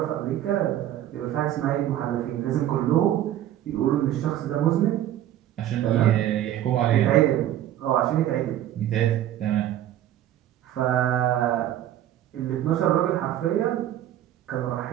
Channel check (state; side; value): quieter; left; 12.2 dB